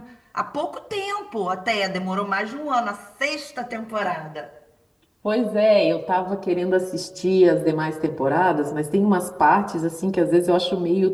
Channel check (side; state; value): both; identical; correlation 1.00